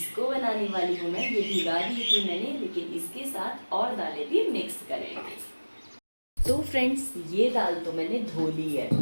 बनाने वाली हूँ मैं। ये भिगा दी थी मैंने, लेकिन इसके साथ और दालें भी मिक्स करेंगे। तो फ्रेंड्स, ये दाल तो मैंने धो ली है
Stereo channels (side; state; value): both; inverted; correlation -1.00